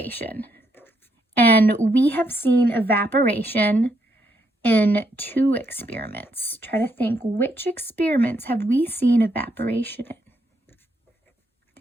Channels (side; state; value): both; normal; correlation 0.76